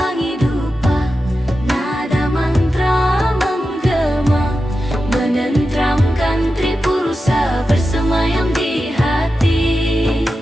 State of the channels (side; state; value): both; normal; correlation 0.91